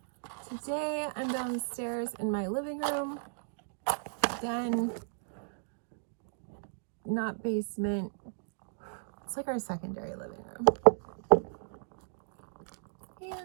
Today I'm downstairs in my living room. Again, not basement. It's like our secondary living room.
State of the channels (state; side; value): silent; left; digital silence